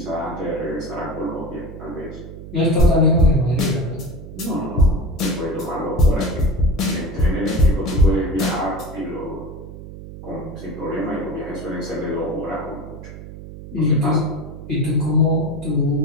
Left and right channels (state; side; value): noise; right; hum, 13 dB below the sound